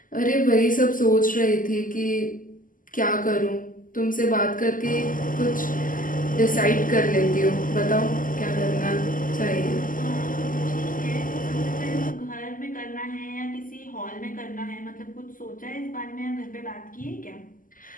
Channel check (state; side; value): late; right; 0.39 ms